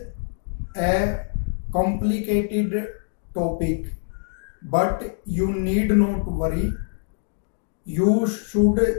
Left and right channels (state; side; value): silent; right; digital silence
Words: a complicated topic, but you need not worry. You should